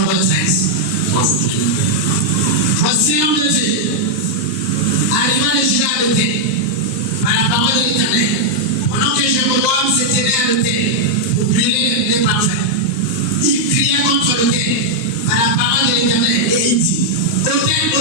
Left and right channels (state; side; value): late; right; 9.6 ms